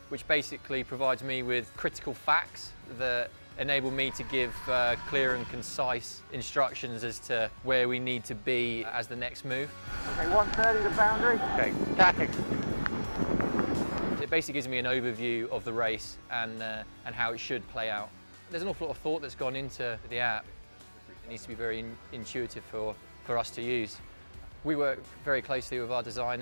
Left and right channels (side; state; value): both; inverted; correlation -1.00